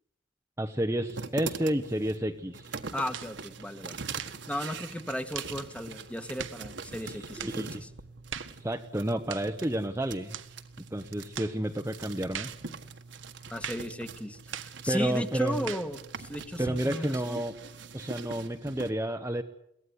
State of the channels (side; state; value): both; normal; correlation 0.76